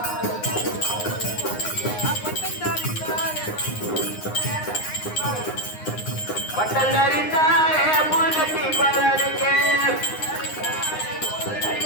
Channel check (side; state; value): right; late; 9.6 ms